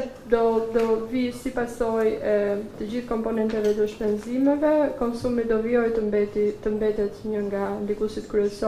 do vi si pasojë e të gjithë komponenteve të shpenzimeve, konsumi do vijojë të mbetet një nga ndikuesit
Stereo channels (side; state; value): both; identical; correlation 1.00